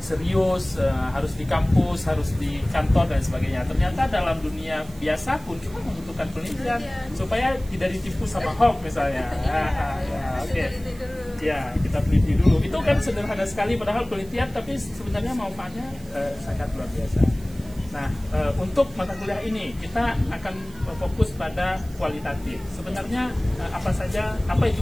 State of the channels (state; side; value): noise; right; hiss, 23 dB below the sound